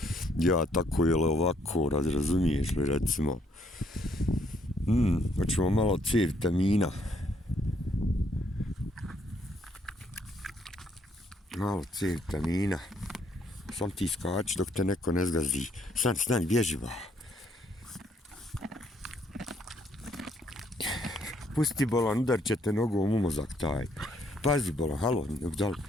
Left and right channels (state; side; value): normal; both; correlation 0.69